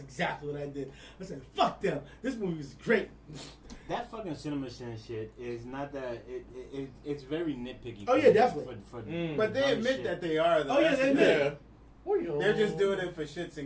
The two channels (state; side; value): identical; both; correlation 1.00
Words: what I did. I said, fuck them. This movie is great. That fucking CinemaSins shit is not that. It's very nitpicky. Oh, yeah, definitely. But they admit that they are. Though. Oh, yeah, they admit. Yeah. They're just doing it for shits